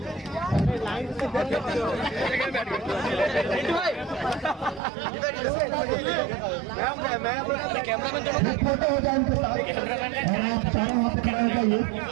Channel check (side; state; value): left; drops out; at 4.8 s